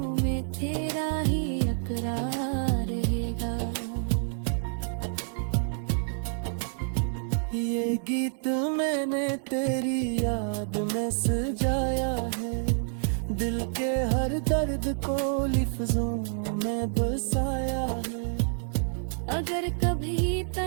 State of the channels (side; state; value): left; silent; digital silence